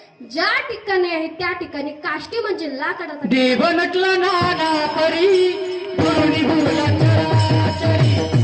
ज्या ठिकाणी आहे त्या ठिकाणी, काष्टी म्हणजे लाकडात. देव नटला नाना परी गुरुनी गुरुला चराचरी,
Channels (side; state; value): both; identical; correlation 1.00